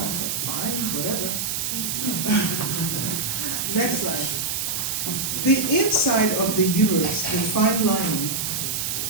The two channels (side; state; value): right; noise; hiss, 1 dB below the sound